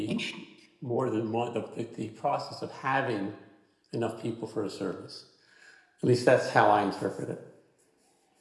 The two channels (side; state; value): both; identical; correlation 1.00